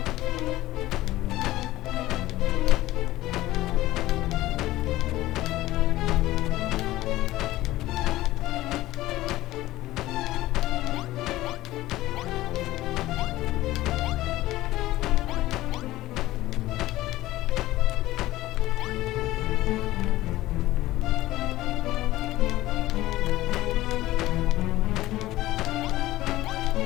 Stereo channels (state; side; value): quieter; right; 16.5 dB